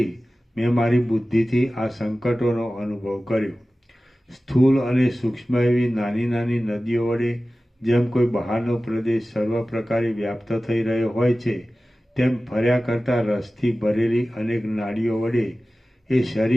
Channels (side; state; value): both; normal; correlation 0.96